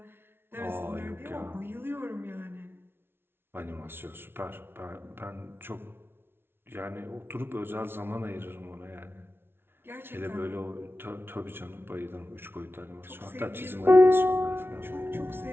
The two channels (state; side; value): late; left; 0.11 ms